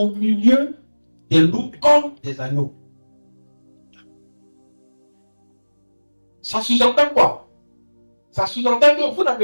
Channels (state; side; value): inverted; both; correlation -1.00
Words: milieu des loups comme des agneaux. Ça sous-entend quoi? Ça sous-entend que vous